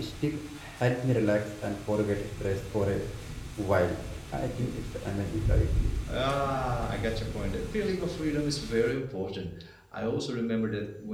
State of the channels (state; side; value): identical; both; correlation 1.00